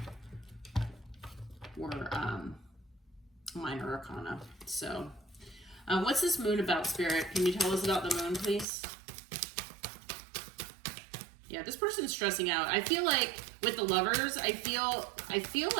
were minor arcana. So what's this moon about, Spirit? Can you tell us about the moon, please? Yeah, this person's stressing out. I feel like with the Lovers, I feel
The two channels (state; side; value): drops out; left; at 8.7 s